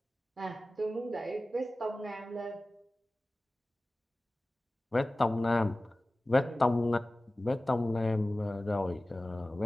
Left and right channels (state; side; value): normal; both; correlation 0.97